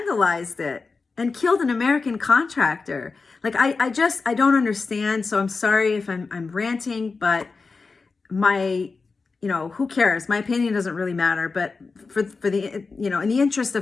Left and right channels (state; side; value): quieter; right; 4.3 dB